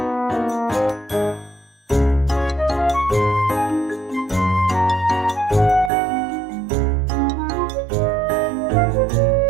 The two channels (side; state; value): left; drops out; at 5.9 s